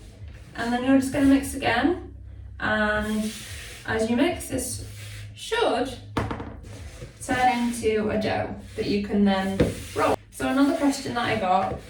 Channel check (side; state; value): both; identical; correlation 1.00